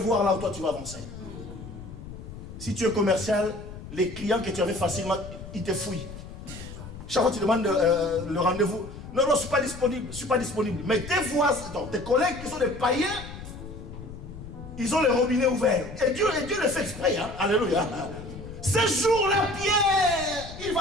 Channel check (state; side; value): noise; left; rumble, 13 dB below the sound